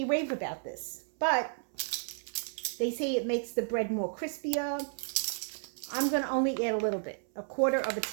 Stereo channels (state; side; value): silent; left; 56 dB below the other